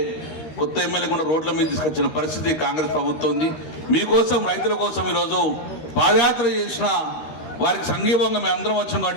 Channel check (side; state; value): right; late; 13 ms